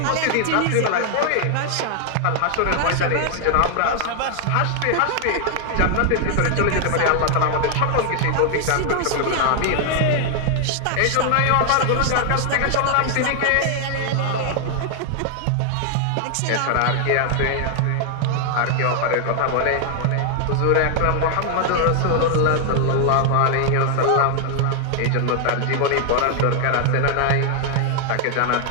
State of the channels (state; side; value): different; both; correlation 0.00